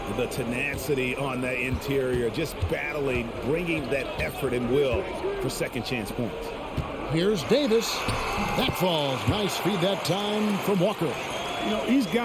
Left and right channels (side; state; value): both; identical; correlation 1.00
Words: The tenacity on the interior, just battling, bringing that effort and will for second chance points. Here's Davis. That falls. Nice feed that time from Walker. You know, he's